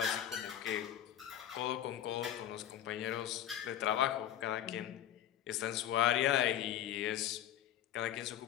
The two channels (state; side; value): quieter; right; 11.1 dB